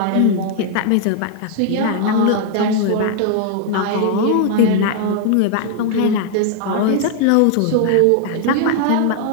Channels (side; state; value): both; different; correlation 0.00